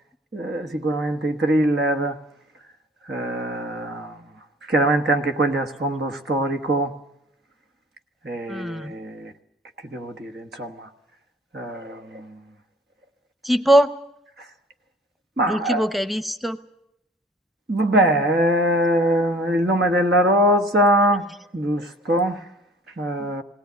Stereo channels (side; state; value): both; normal; correlation 0.51